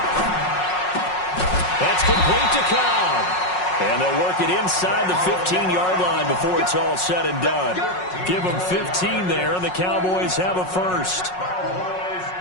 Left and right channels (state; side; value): late; right; 5.5 ms